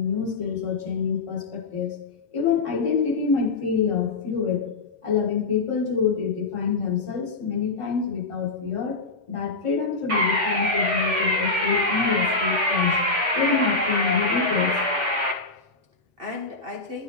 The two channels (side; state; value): right; quieter; 3.6 dB